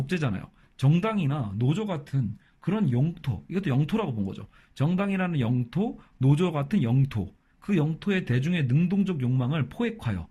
정당이나 노조 같은 그런 영토, 이것도 영토라고 본 거죠. 정당이라는 영토, 노조 같은 영토, 그 영토의 대중의 능동적 욕망을 포획하여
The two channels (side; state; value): both; identical; correlation 1.00